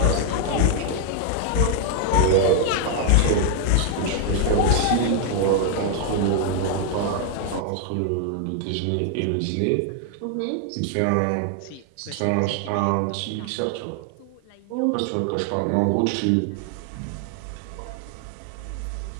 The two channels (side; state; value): both; different; correlation 0.00